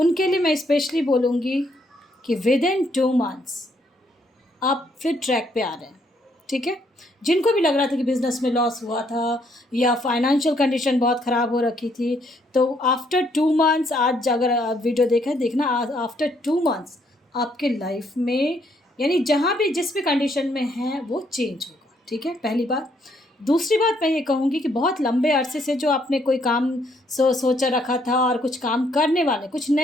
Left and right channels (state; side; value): normal; both; correlation 0.70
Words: लिए मैं स्पेशली बोलूँगी कि विद इन 2 मंथ्स आप फिर ट्रैक पे आ रहे हैं, ठीक है। जिनको भी लग रहा था कि बिज़नेस में लॉस हुआ था या फाइनेंशियल कंडीशन बहुत ख़राब हो रखी थी, तो आफ्टर 2 मंथ्स, आज अगर आप वीडियो देखना, आफ्टर 2 मंथ्स आपके लाइफ में, यानी जहाँ भी जिस भी कंडीशन में हैं वो चेंज होगा, ठीक है, पहली बात। दूसरी बात मैं ये कहूँगी कि बहुत लंबे अरसे से जो आपने कोई काम सोचा रखा था और कुछ काम करने वाले, कुछ